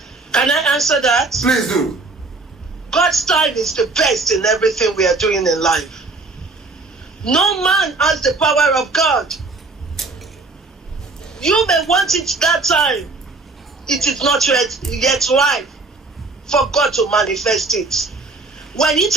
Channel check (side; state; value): left; quieter; 3.6 dB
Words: Can I answer that? Please do. God's time is the best in everything we are doing in life. No man has the power of God. You may want it that time. It is not yet right for God to manifest it. When it